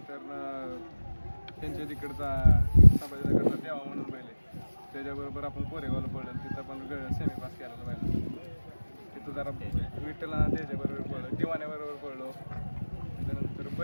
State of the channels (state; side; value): inverted; both; correlation -1.00